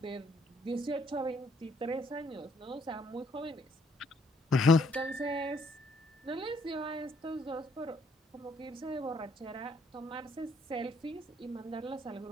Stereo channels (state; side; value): normal; both; correlation 0.68